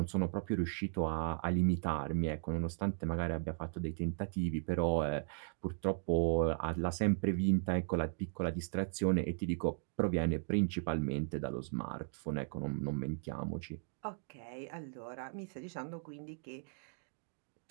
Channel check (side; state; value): left; silent; digital silence